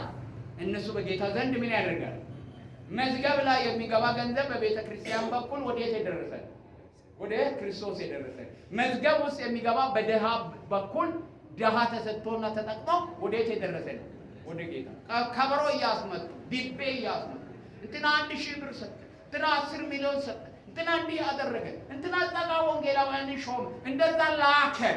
እነሱ በጌታ ዘንድ ምን ያደርጋል? መዝገብ ላይ የሚገባ ገንዘብ በቤተክርስቲያን በኩል ወዴት የደረሰ? ወደ ክርስቶስ የደረሰ። መዝገብ ውስጥ የሚገባ በደሃ በኩል ደሃ ተሰጥቶና ተጠቅሞ ወዴት የደረሰ ነው? ወደ ጌታ። ከበሮ እያስመጡ ዲቤ እያስመጡ እንትና 1000 ብር ሰጠ፣ እንትና 10 ሚሊዮን ሰጠ፣ እንትና እንዲህ ያደረገ፣ እንትና ጸጋ ወንጌላውያን ሾም፣ እንደዛ ላከ።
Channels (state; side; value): identical; both; correlation 1.00